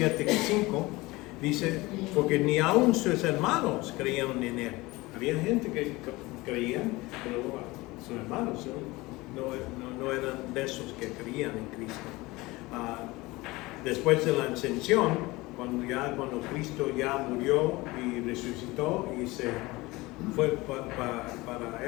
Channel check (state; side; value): quieter; right; 21.3 dB